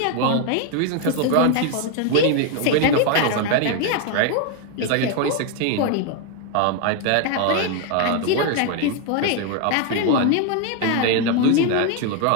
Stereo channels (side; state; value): both; different; correlation 0.01